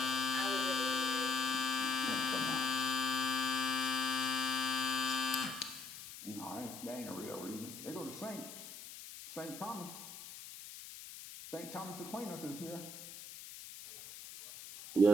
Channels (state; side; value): noise; left; hiss, 13 dB below the sound